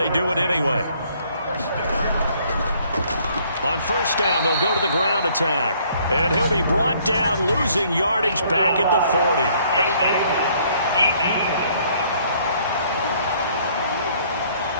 do it anyway. On 1st down, they'll go to the ground attack. And he'll be brought down, losing yardage back at the 40.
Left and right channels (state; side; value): inverted; both; correlation -0.63